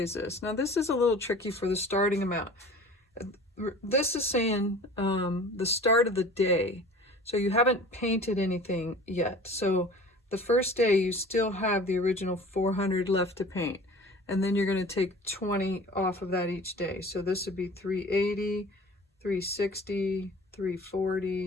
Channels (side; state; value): both; normal; correlation 0.43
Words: this? Now this is a little tricky for the starting amount. This is saying the start of the day. So you haven't painted anything yet. So the first day you still have the original 400 left to paint. And then you're going to take 20 off of that each day. So this would be 380, 360,